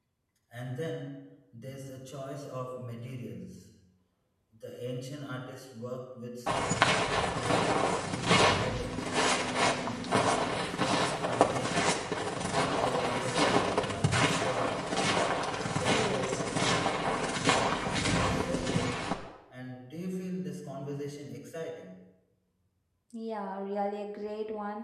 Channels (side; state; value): both; identical; correlation 1.00